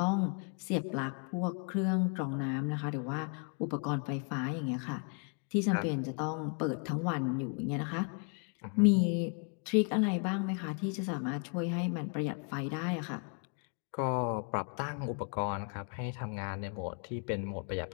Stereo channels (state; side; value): quieter; right; 39.4 dB